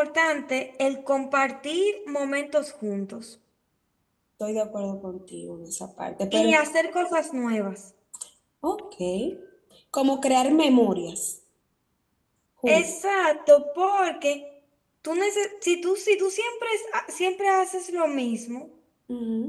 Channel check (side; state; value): both; identical; correlation 1.00